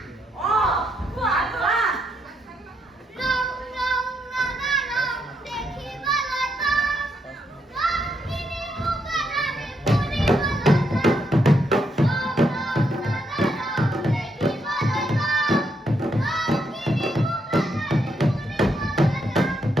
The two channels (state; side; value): normal; both; correlation 0.78